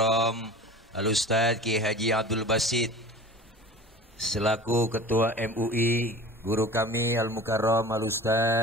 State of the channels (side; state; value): both; normal; correlation 0.39